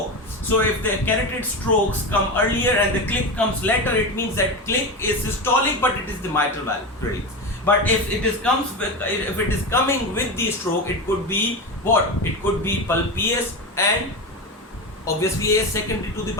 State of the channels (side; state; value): both; normal; correlation 0.20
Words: So if the carotid strokes come earlier and the click comes later, it means that click is systolic, but it is the mitral valve predicts. But if it is coming with the stroke, it could be what? It could be PS and obviously AS secondary to the